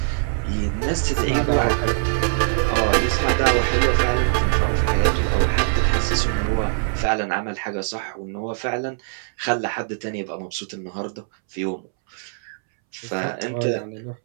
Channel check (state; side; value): silent; left; 64 dB below the other